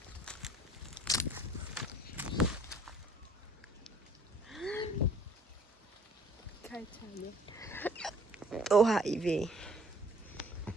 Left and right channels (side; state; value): both; normal; correlation 0.57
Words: काय चालू? तो हायवे.